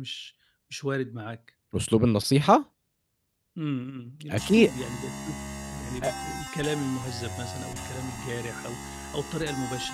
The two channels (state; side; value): identical; both; correlation 1.00